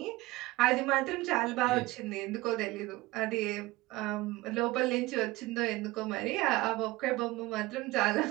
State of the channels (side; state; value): left; quieter; 19.7 dB